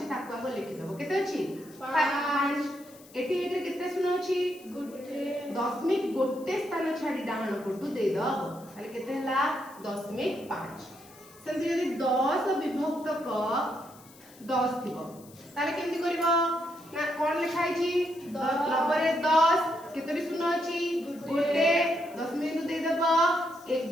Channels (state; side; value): noise; left; hiss, 23 dB below the sound